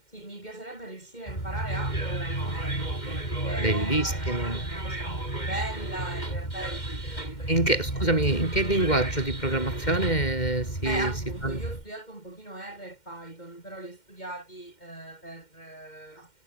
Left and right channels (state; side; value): late; right; 2.1 ms